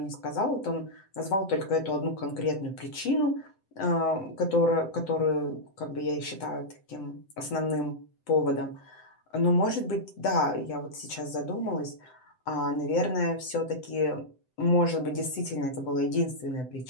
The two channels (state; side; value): late; right; 7.8 ms